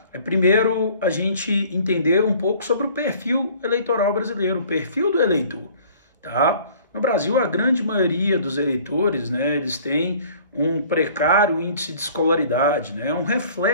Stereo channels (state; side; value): inverted; both; correlation -0.52